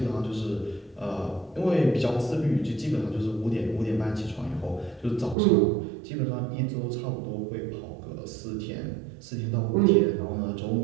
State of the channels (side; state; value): left; drops out; at 5.4 s